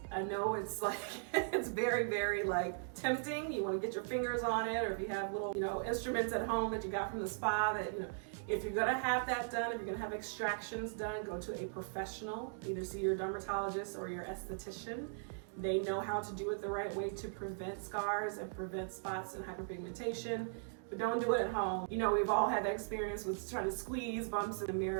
I know it's like, it's very like tempting. You want to get your fingers on it, or if you have little, instruments at home that you got from the spa that, if you're gonna have that done, if you're gonna have extractions done, go to a professional. Either see your dermatologist or your esthetician. They know how to do it the right way to prevent scars and prevent spots and hyperpigmentation, but don't do it at home. We've all had that experience with trying to squeeze bumps in the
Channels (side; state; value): left; silent; digital silence